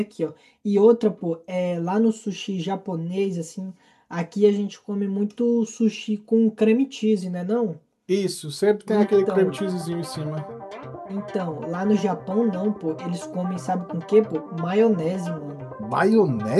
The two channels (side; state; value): both; identical; correlation 1.00